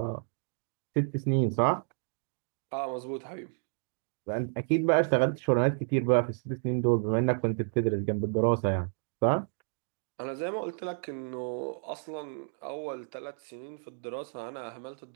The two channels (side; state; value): left; silent; digital silence